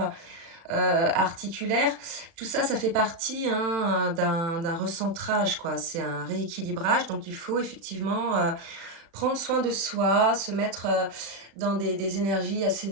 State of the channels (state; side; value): late; left; 36 ms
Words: articulaire, tout ça, ça fait partie hein, d'un recentrage, quoi. C'est un rééquilibrage, donc il faut effectivement prendre soin de soi, se mettre dans des énergies assez